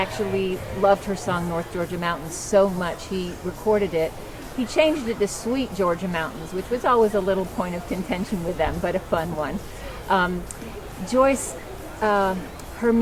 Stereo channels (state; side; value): identical; both; correlation 1.00